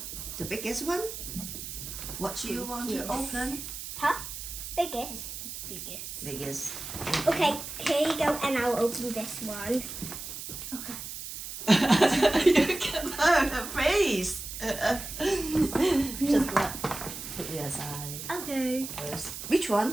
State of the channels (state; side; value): noise; right; hiss, 8 dB below the sound